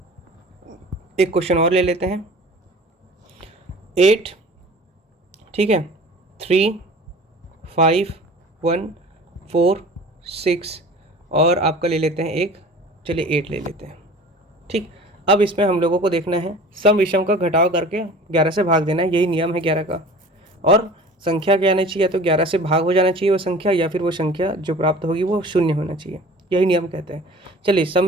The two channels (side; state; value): both; normal; correlation 0.43